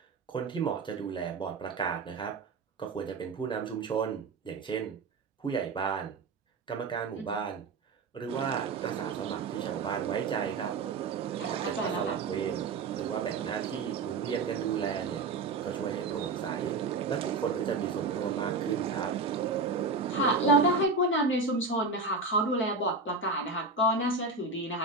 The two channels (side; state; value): left; quieter; 3.9 dB